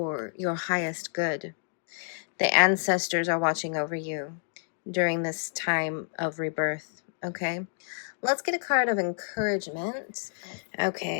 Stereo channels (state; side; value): silent; right; digital silence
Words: your highest good. The ancestors are watching over you during this time of rebirth, okay? Let's get a card of encouragement.